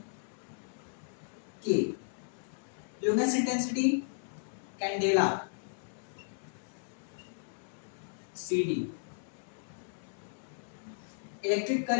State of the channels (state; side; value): silent; right; 54 dB below the other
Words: K. Luminous intensity, candela, CD. Electric